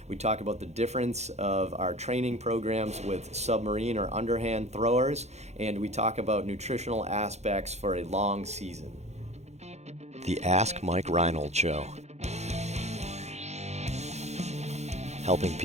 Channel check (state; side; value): late; left; 0.32 ms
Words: We talk about the difference of our training programs with submarine or underhand throwers, and we talk about nutritional aspects for a long season. The Ask Mike Reinold Show. Helping